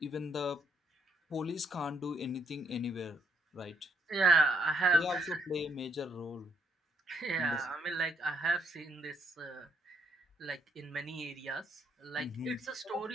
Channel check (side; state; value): both; normal; correlation 0.73